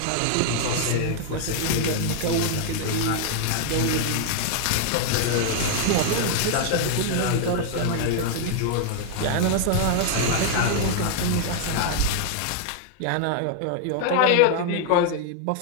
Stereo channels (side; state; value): both; different; correlation 0.00